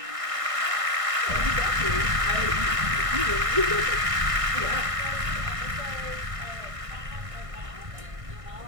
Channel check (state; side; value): late; left; 1.5 ms